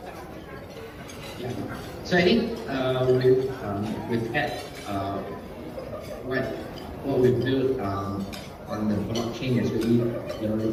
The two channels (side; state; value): both; identical; correlation 1.00